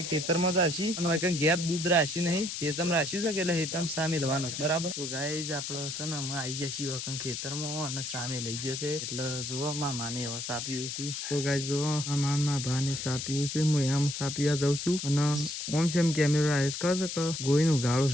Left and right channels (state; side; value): noise; left; hiss, 5 dB below the sound